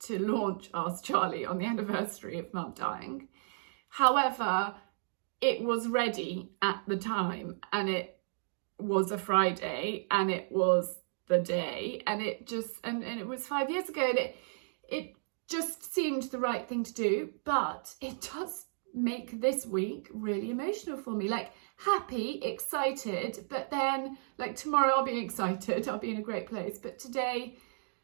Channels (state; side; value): silent; left; digital silence